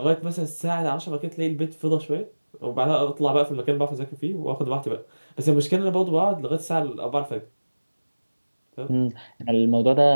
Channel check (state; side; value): inverted; both; correlation -1.00